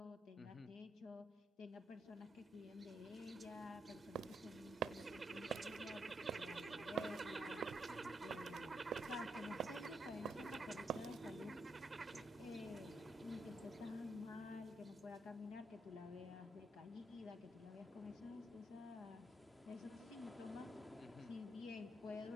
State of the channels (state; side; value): normal; both; correlation 0.79